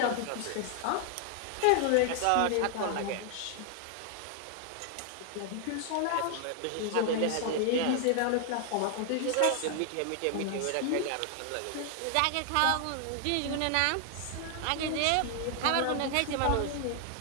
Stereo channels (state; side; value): different; both; correlation 0.00